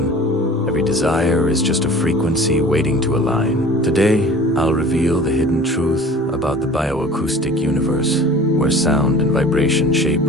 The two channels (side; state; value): both; normal; correlation 0.44